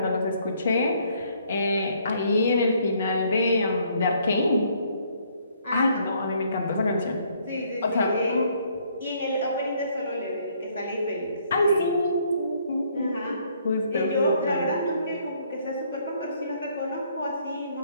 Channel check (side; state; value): both; inverted; correlation -0.66